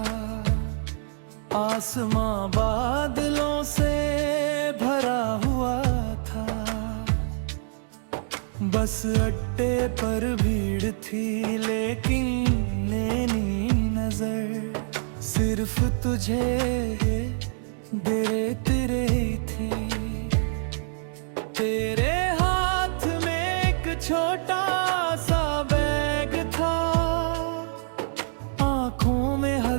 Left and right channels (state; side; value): silent; left; digital silence